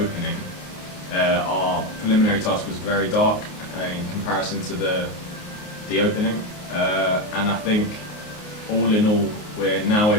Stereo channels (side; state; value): right; late; 29 ms